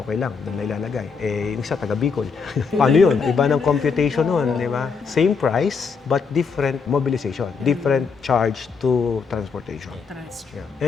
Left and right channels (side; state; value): right; quieter; 5.4 dB